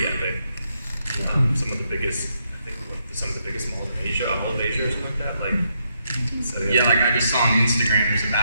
epic. Some of the biggest, I think, some of the biggest malls in Asia, all of Asia or something like that. Like, so yeah, like I just saw on Instagram, there's a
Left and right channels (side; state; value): both; inverted; correlation -0.78